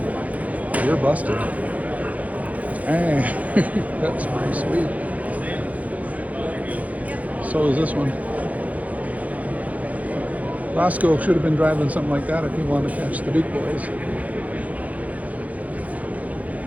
You're busted. Hey, that's pretty sweet. So is this one. Roscoe should have been driving something like that if he wanted to catch the Duke boys.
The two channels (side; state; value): left; late; 0.072 ms